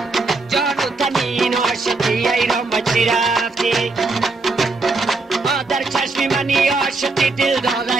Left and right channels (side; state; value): left; quieter; 3.6 dB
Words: جان و تنی این عاشقی ایران بچی رفتی در چشم منی عاشقی دل داده